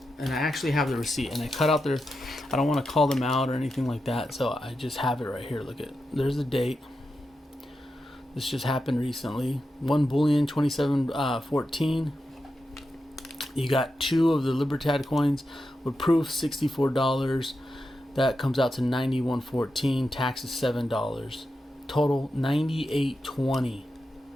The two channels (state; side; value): normal; both; correlation 0.88